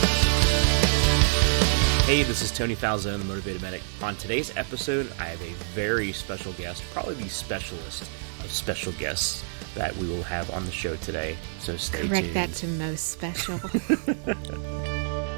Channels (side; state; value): left; silent; 58 dB below the other